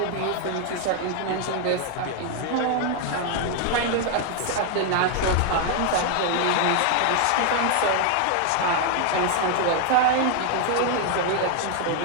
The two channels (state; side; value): different; both; correlation 0.00